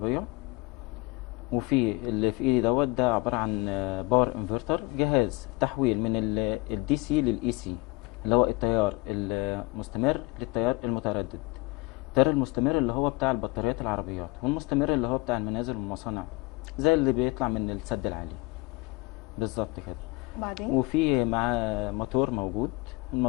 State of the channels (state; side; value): quieter; right; 22.6 dB